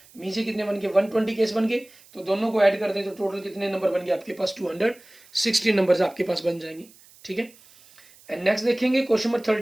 नीचे कितने बन गए, 120 केस बन गए, तो दोनों को ऐड कर दें तो टोटल कितने नंबर बन गए आपके पास, 260 नंबर्स आपके पास बन जाएंगे, ठीक है। एंड नेक्स्ट देखेंगे क्वेश्चन नंबर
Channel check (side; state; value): right; noise; hiss, 25 dB below the sound